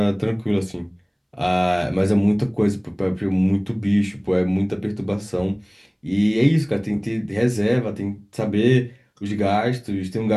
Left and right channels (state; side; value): identical; both; correlation 1.00